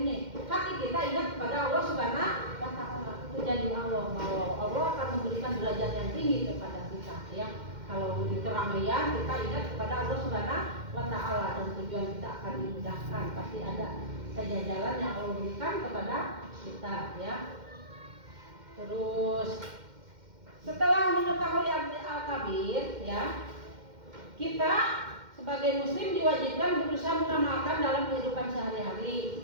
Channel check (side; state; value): left; late; 2.1 ms